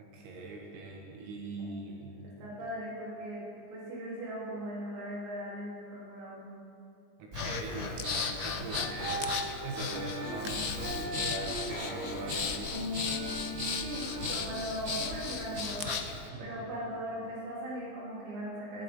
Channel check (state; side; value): late; left; 19 ms